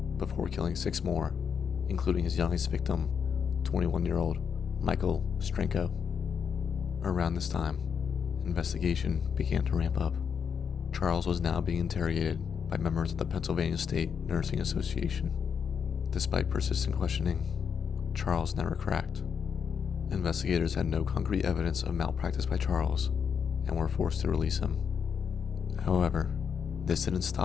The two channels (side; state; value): right; quieter; 6.9 dB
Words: before killing 6 more, including his youngest victim, 21-year-old Michael Strenko. Around this time, investigation began to ramp up. Charles was now being interrogated by members of the Pennsylvania State Nursing Association. Despite persistent questioning, Charles never cracked. Investigators had no concrete evidence of malpractice by Charles and were forced to release him. However, this didn't